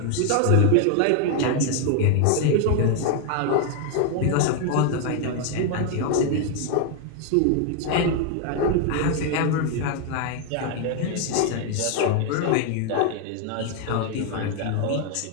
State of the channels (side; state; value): both; different; correlation 0.00